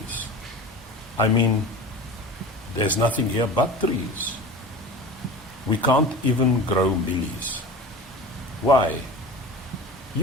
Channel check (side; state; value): both; normal; correlation 0.34